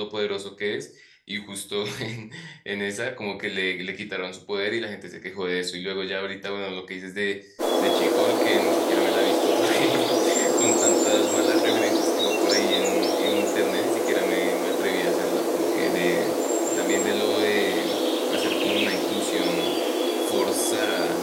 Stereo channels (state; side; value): identical; both; correlation 1.00